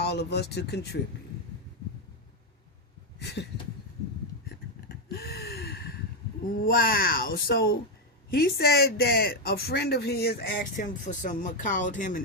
of us to contribute. Wow. So he said that a friend of his called him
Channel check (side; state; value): both; normal; correlation 0.04